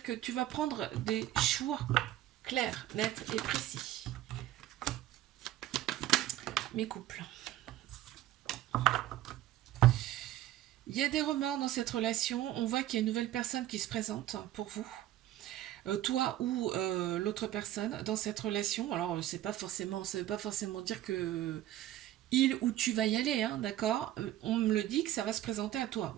que tu vas prendre des choix clairs, nets et précis. Mes couples. Il y a des remords dans cette relation. On voit qu'il y a une nouvelle personne qui se présente pour vous. Toi ou l'autre personne dans cette relation. Alors, c'est pas forcément, ça veut pas forcément dire que il ou tu vas y aller, hein, d'accord. On me le dit que ça va se présenter à toi.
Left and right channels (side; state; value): left; quieter; 13.6 dB